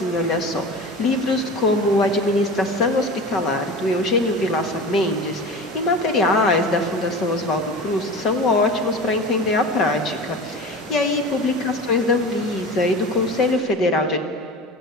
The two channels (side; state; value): both; normal; correlation 0.33